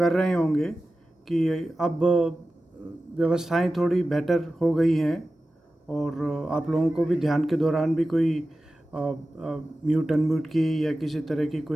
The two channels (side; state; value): both; normal; correlation 0.94